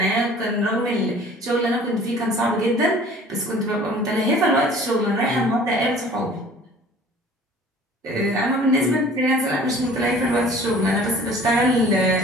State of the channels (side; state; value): both; normal; correlation 0.48